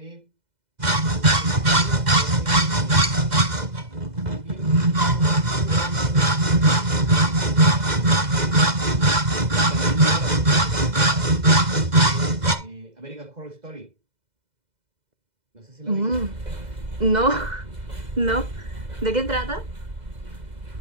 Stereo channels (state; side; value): late; left; 2.0 ms